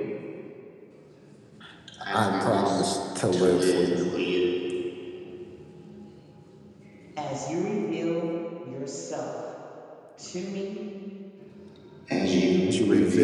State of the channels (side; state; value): both; identical; correlation 1.00